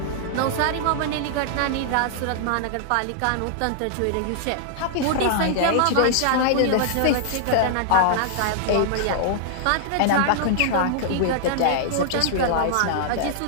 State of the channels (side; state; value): both; different; correlation -0.01